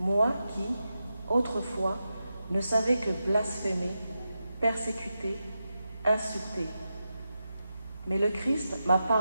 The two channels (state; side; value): inverted; both; correlation -0.90